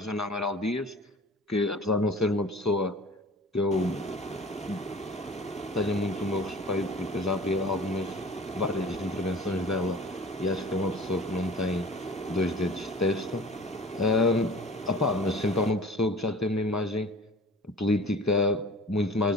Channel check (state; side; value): normal; both; correlation 0.43